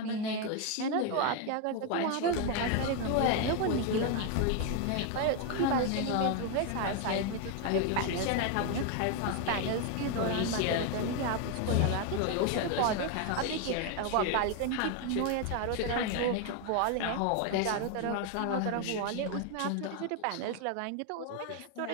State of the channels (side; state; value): both; different; correlation 0.01